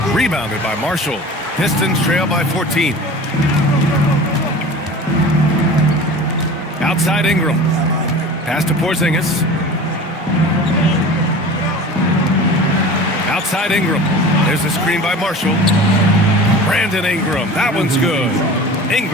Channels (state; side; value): normal; both; correlation 0.38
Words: Rebounded by Marshall. Pistons trail by 14. Outside Ingram. Pass to Porzingis. Outside Ingram. There's a screen by Marshall. Brandon Ingram. That one's good.